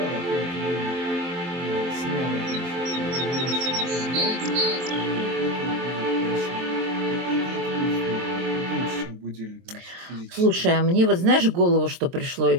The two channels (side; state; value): left; late; 23 ms